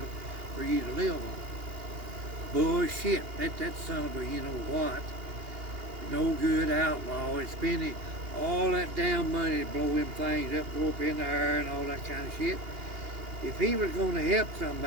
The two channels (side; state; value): left; late; 2.8 ms